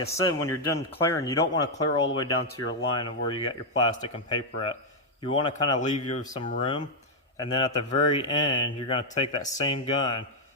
said, when you're done clearing, you don't want to clear all the way down to your line of where you got your plastic and paper at. You want to kind of leave you some room, and then at the very end, you're going to take that same gun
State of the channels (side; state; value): both; normal; correlation -0.01